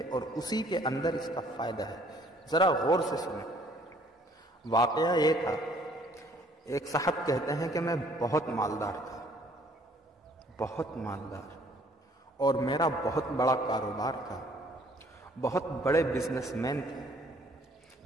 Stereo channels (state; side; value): normal; both; correlation 0.59